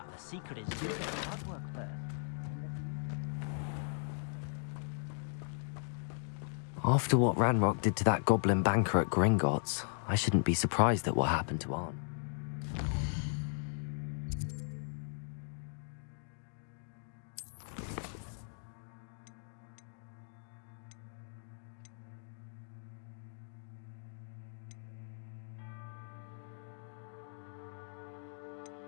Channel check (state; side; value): silent; right; digital silence